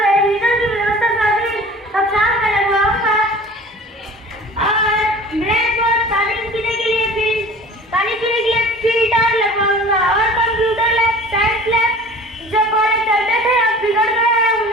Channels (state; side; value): normal; both; correlation 0.43